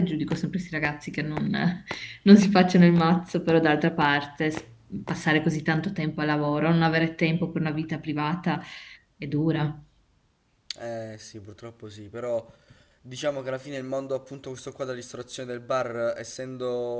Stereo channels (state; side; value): identical; both; correlation 1.00